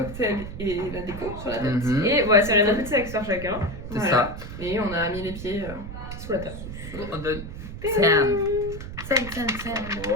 et la déco sur la tête. Mhm. Et voilà, c'est notre petite accessoire chacun. C'est Voilà. ça. Et on a mis les pieds sous la table. On donne Sam.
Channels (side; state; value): right; noise; rumble, 10 dB below the sound